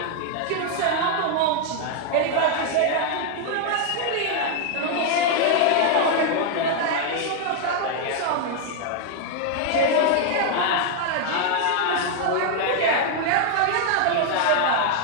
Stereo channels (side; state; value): both; different; correlation 0.00